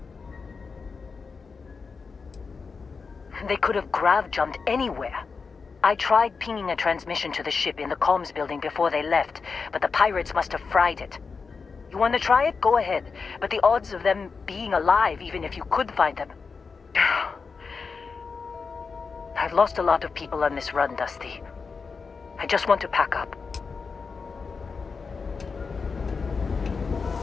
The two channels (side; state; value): right; quieter; 5.0 dB